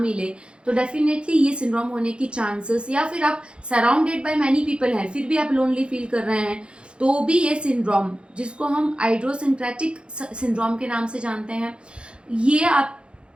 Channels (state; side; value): late; left; 0.056 ms